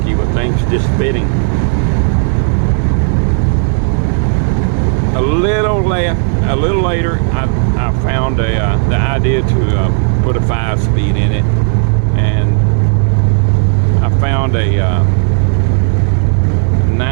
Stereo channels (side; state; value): left; silent; 56 dB below the other